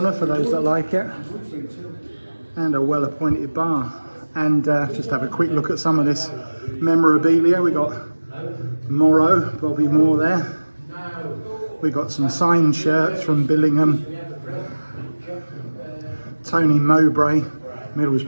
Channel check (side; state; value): both; inverted; correlation -1.00